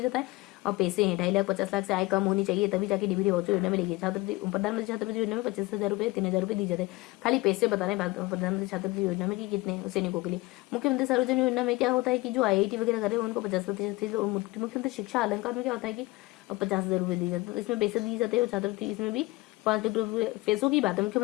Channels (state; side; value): quieter; right; 21.4 dB